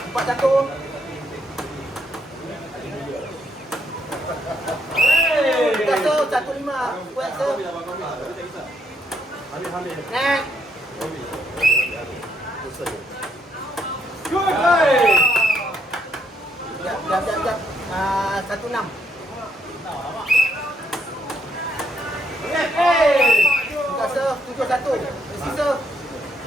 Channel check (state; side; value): normal; both; correlation 0.73